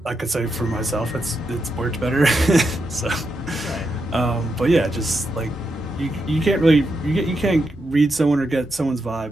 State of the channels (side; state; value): both; normal; correlation 0.84